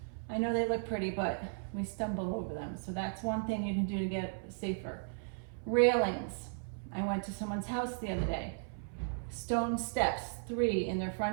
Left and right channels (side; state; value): left; silent; 54 dB below the other